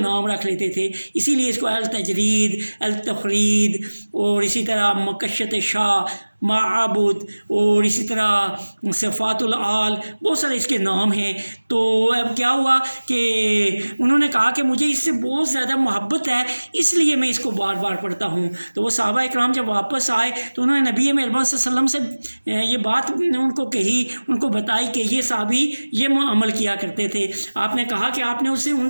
رکھ لیتے تھے، اسی لیے اس کو التجرید، التفرید، اور اسی طرح مکشت شاہ، معبود، اور اسی طرح صفات العال، بہت سارے اس کے نام ہیں۔ تو اب کیا ہوا کہ انہوں نے کہا کہ مجھے اس سے بہت زیادہ محبت ہے، اس لیے میں اس کو بار بار پڑھتا ہوں۔ تو وہ صحابہ اکرام جب واپس آئے تو انہوں نے نبی مہربان صلی اللہ علیہ وسلم سے یہ بات ان کو کہی، ان کو بتائی کہ یہ صحابی یہ عمل کیا کرتے تھے۔ آپ نے کہا کہ آپ نے ان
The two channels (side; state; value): both; inverted; correlation -1.00